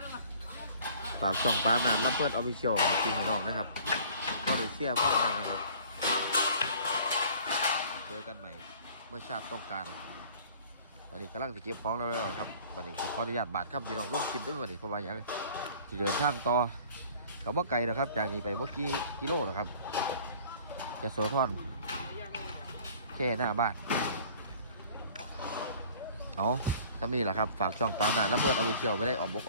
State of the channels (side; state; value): both; inverted; correlation -0.50